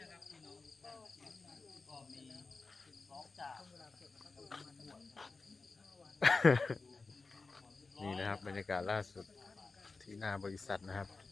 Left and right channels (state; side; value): quieter; right; 4.0 dB